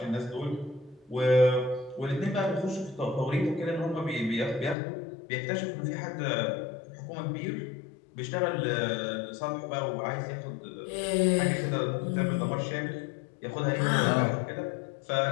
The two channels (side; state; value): right; drops out; at 4.8 s